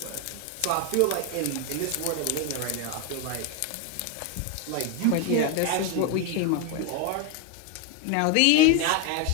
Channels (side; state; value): both; different; correlation 0.01